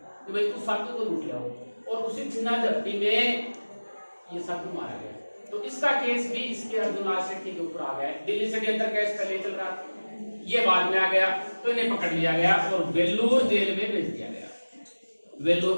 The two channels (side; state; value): both; inverted; correlation -1.00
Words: कि भाई उस साधु को लूट लाओ, और उसी चुना झपटी में ये साधु मारा गया। तो इसका केस भी इसके अर्जुन लाल सेठी के ऊपर आ गया। दिल्ली षड्यंत्र केस पहले चल रहा था, ये बाद में आ गया, तो इन्हें पकड़ लिया गया और वेल्लोर जेल में भेज दिया गया।